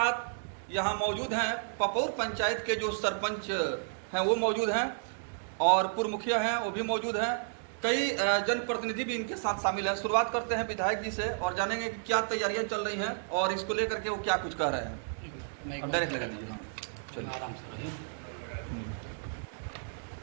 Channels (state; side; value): silent; left; digital silence